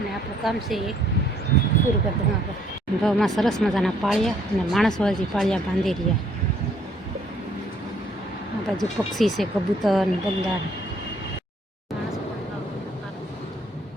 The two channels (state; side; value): normal; both; correlation 0.64